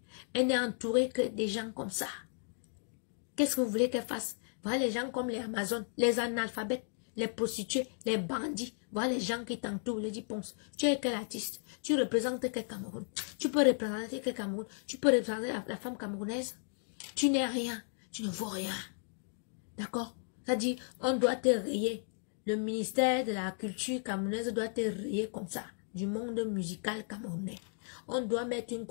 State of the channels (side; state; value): right; silent; 55 dB below the other